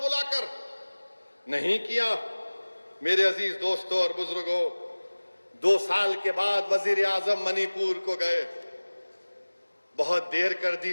नहीं किया। मेरे अजीज दोस्तों और बुजुर्गों, 2 साल के बाद वजीर आजम मणिपुर को गए, बहुत देर कर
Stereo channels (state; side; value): inverted; both; correlation -1.00